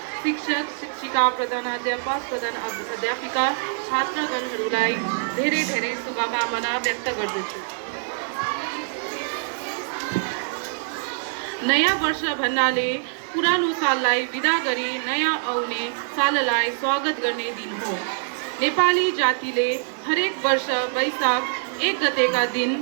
शिक्षक, शिक्षिका, प्रधानाध्यापक, अध्यापिका, छात्रगणहरूलाई धेरै धेरै शुभकामना व्यक्त गर्दछु। नयाँ वर्ष भन्नाले पुरानो साललाई विदा गरी नयाँ आउने साललाई स्वागत गर्ने दिन हो। नेपाली जातिले हरेक वर्ष वैशाख 1 गतेका दिन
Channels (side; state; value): left; silent; 62 dB below the other